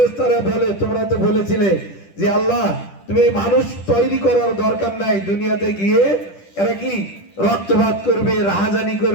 বলে তোমরা তো বলেছিলে যে আল্লাহ তুমি মানুষ তৈরি করার দরকার নাই, দুনিয়াতে গিয়ে এরা কি রক্তপাত করবে, রাহাজানি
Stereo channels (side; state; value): right; late; 10 ms